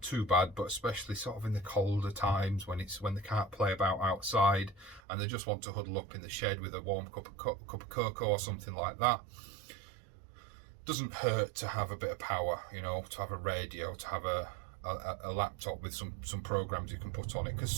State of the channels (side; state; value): left; drops out; at 5.0 s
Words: too bad, but especially sort of in the colder times when they can't play about outside and they just want to huddle up in the shed with a warm cup of cocoa or something like that. Doesn't hurt to have a bit of power, to have a radio, to have a laptop with some programs you can put on it, because